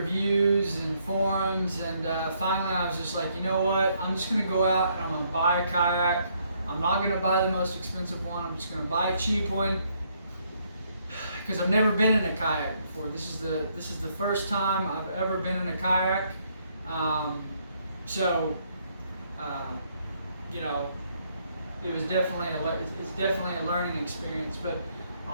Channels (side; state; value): both; inverted; correlation -0.71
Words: and forums, and finally I was just like, you know what, I'm just going to go out and I'm going to buy a kayak. I'm not going to buy the most expensive one. I'm just going to buy a cheap one, because I've never been in a kayak before. This is the first time I've ever been in a kayak. You know, it's definitely a learning experience. But